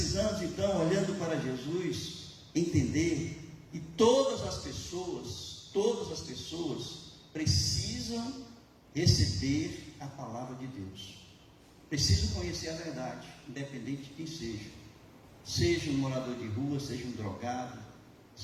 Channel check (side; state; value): both; identical; correlation 1.00